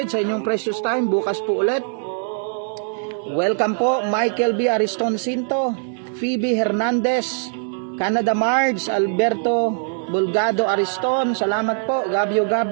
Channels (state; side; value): silent; left; 65 dB below the other